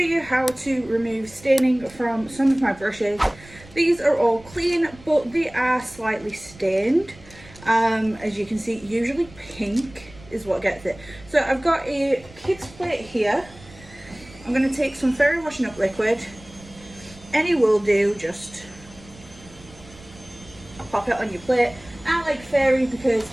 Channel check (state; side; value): noise; right; rumble, 21 dB below the sound